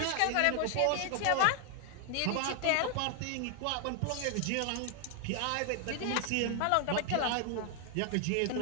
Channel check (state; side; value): different; both; correlation 0.00